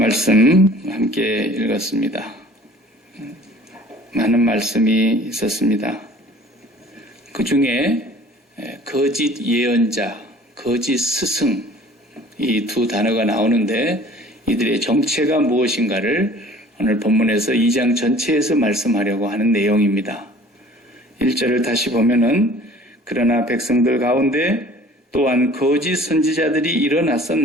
함께 읽었습니다. 많은 말씀이 있었습니다. 그 중에 거짓 예언자, 거짓 스승 이 두 단어가 나오는데 이들의 정체가 무엇인가를 오늘 본문에서 2장 전체에서 말씀하려고 하는 내용입니다. 1절을 다시 보면은 그러나 백성들 가운데 또한 거짓 선지자들이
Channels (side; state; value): both; normal; correlation 0.49